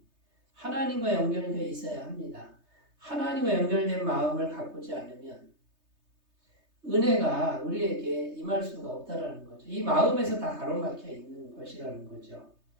하나님과 연결되어 있어야 합니다. 하나님과 연결된 마음을 가꾸지 않으면 은혜가 우리에게 임할 수가 없다라는 거죠. 이 마음에서 다 가로막혀 있는 것이라는 거죠.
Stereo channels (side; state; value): left; late; 3.3 ms